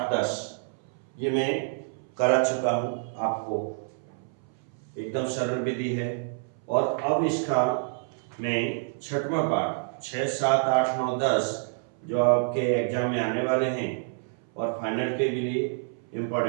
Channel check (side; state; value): left; silent; 60 dB below the other